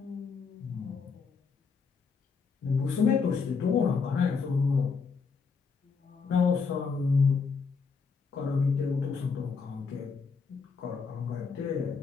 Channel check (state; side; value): quieter; right; 5.2 dB